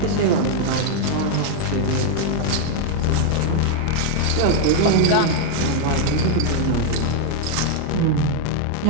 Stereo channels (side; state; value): both; different; correlation 0.00